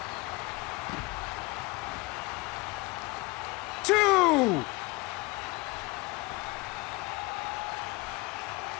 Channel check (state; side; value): quieter; right; 24.1 dB